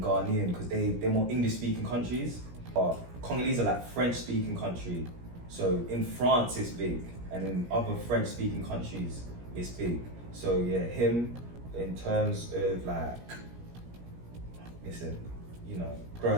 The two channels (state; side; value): late; left; 17 ms